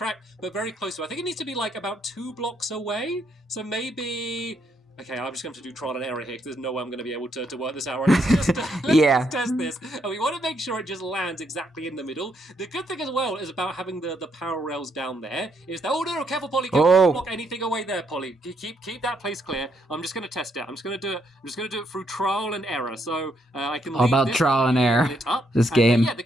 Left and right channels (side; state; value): both; normal; correlation 0.75